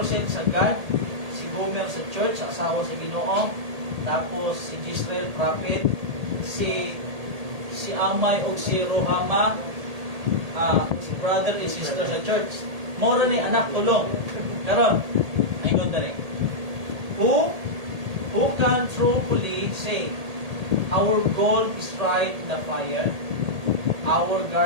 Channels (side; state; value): left; late; 1.8 ms